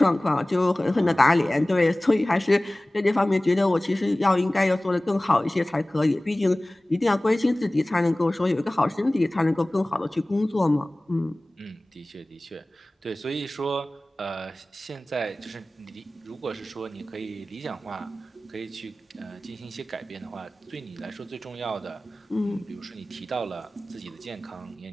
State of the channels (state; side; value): normal; both; correlation 0.98